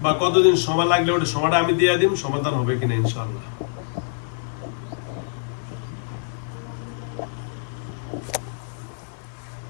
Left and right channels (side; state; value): right; silent; 55 dB below the other